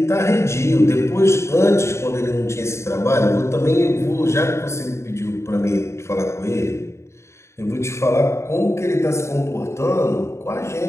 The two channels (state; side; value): late; right; 0.13 ms